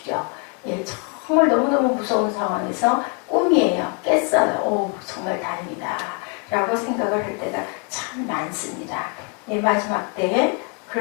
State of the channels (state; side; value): quieter; right; 34.2 dB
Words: 정말 너무너무 무서운 상황에서 꿈이에요. 깼어요. 오, 정말 다행이다 라고 생각을 할 때가 참 많습니다. 마지막 때에